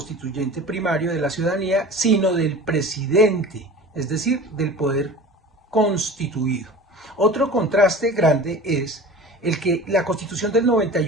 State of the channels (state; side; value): normal; both; correlation 0.38